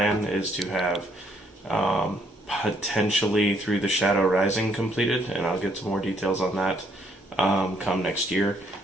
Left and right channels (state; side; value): normal; both; correlation 0.69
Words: is to have potentially Through the Shadow Rising completed, and I'll get some more details on that come next year.